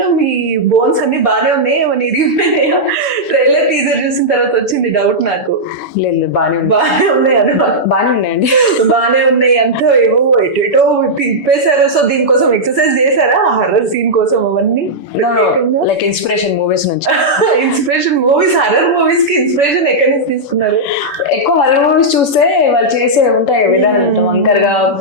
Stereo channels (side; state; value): right; late; 7.0 ms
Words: మీ బోన్స్ అన్ని బాగానే ఉన్నాయి, ఏమన్నా ఇరిగిపోయినాయా? ట్రైలర్ టీజర్ చూసిన తర్వాత వచ్చింది డౌట్ నాకు. లేదు బాగానే ఉన్నాయి అనమాట. బాగానే ఉన్నాయండి, బాగానే ఉన్నాయి. అంతా ఏవో ఎటో తిప్పేశారు. సో దీనికోసం ఎక్సర్సైజ్ చేశారా హర్రర్ సీన్ కోసం? అవన్నీ లైక్ ఇన్స్పిరేషన్ మూవీస్ నుంచి. ఇన్స్పిరేషన్ మూవీస్, హర్రర్ మూవీస్ కి ఇన్స్పిరేషన్ ఎక్కడి నుంచి తీసుకున్నారు? ఎక్కువ హర్రర్ మూవీస్ చూస్తే వాళ్ళు చేసే ఉంటాయి విధానం, వంకర్ గా